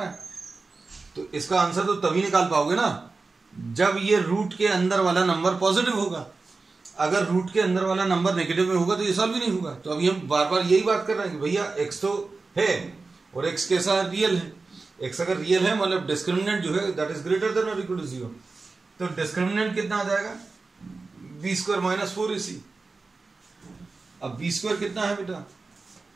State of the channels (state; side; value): quieter; left; 3.9 dB